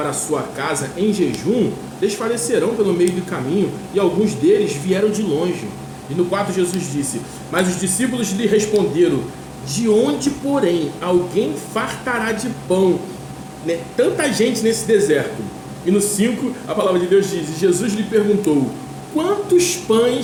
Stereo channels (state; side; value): identical; both; correlation 1.00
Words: a sua casa em jejum, desfalecerão pelo meio do caminho, e alguns deles vieram de longe. E no 4 Jesus disse: mas os discípulos lhe responderam: de onde, porém, alguém fartará de pão, né, tanta gente nesse deserto? E no 5, a palavra de Deus diz: e Jesus lhe perguntou: quantos